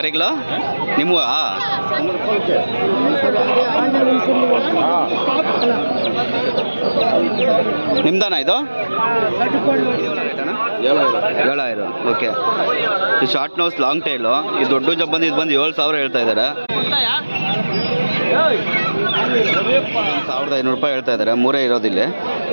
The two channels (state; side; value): inverted; both; correlation -1.00